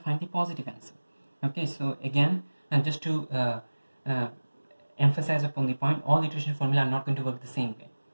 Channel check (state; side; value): inverted; both; correlation -1.00